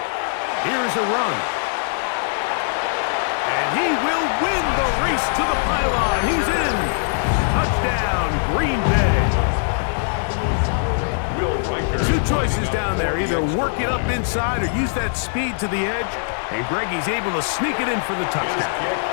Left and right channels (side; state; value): right; silent; 65 dB below the other